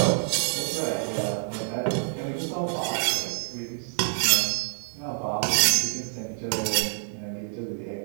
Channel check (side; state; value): left; silent; digital silence